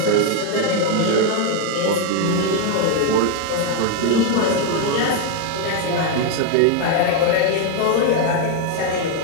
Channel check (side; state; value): both; different; correlation 0.01